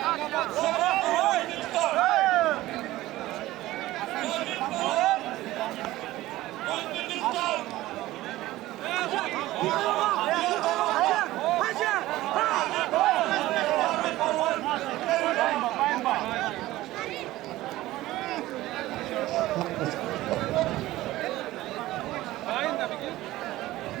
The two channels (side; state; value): left; quieter; 16.7 dB